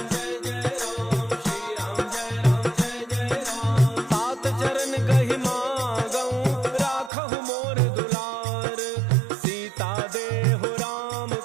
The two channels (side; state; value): left; drops out; at 7.1 s